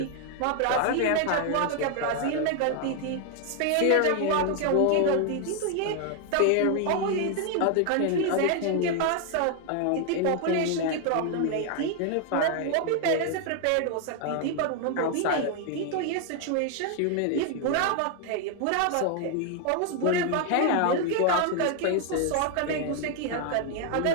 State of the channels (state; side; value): different; both; correlation 0.00